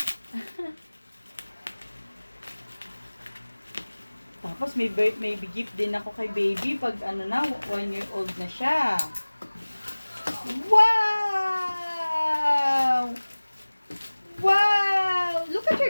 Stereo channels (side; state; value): both; inverted; correlation -1.00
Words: Tapos may gift din ako kay baby pag ano na, 1 year old na siya. Wow! Wow! Look at